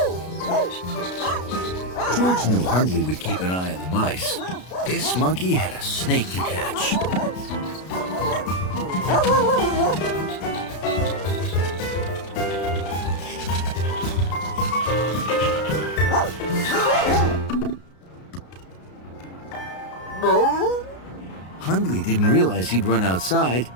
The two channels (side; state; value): right; late; 33 ms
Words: George knew Hundley would keep an eye on the mice. This monkey had a snake to catch. Hundley didn't realize he'd run outside